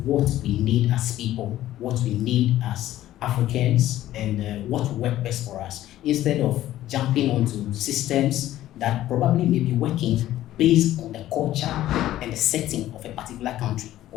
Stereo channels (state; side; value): quieter; right; 13.9 dB